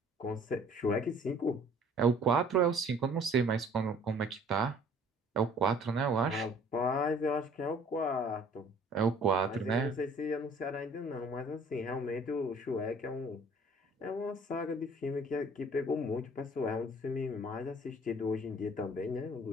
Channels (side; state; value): both; normal; correlation 0.54